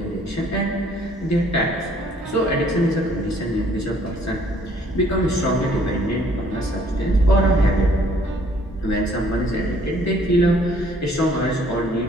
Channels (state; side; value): normal; both; correlation 0.61